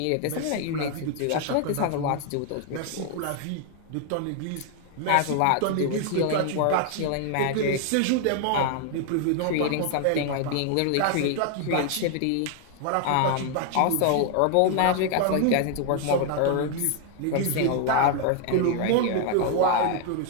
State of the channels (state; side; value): different; both; correlation 0.00